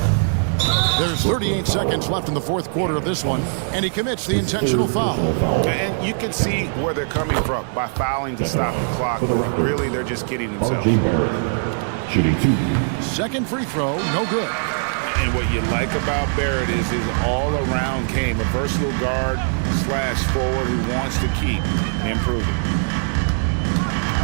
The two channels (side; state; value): left; silent; 55 dB below the other